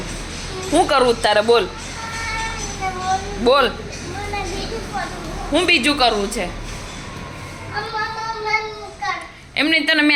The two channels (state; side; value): identical; both; correlation 1.00